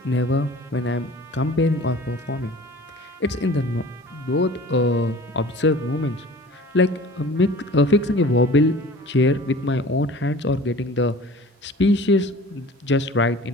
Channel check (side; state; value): both; normal; correlation 0.44